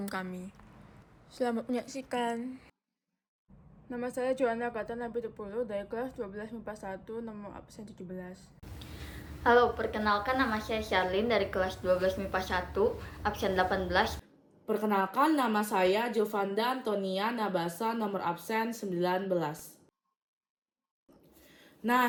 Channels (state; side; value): identical; both; correlation 1.00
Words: kami. Selamat menyaksikan. Nama saya Joanna Gata Nabitupulu dari kelas 12 MIPA 1 nomor absen 17. Halo, perkenalkan nama saya Charlene dari kelas 12 MIPA 1, absen 18. Perkenalkan, nama saya Jovanda Antonia Nabasa, nomor absen 19.